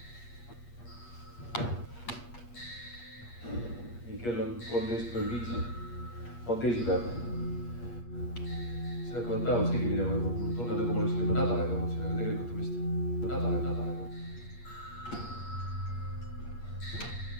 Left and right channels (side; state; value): right; late; 8.5 ms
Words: nii, kell on 13:05, on teisipäev. siin hakkavad päevad segi minema juba, mul tunne nagu ma oleksin juba nädalaid olnud siin, aga tegelikult on vist nädalaid.